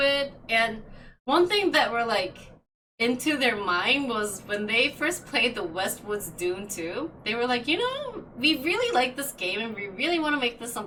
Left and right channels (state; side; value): identical; both; correlation 1.00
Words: And one thing that were like into their mind was when they first played the Westwood's Dune 2, they were like, you know, we really like this game and we really want to make this